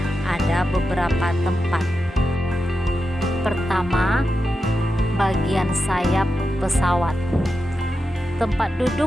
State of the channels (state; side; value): normal; both; correlation 0.89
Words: ada beberapa tempat. Pertama, bagian sayap pesawat. Tempat